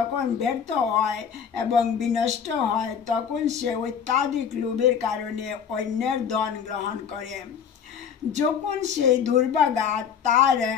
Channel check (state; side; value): quieter; right; 7.5 dB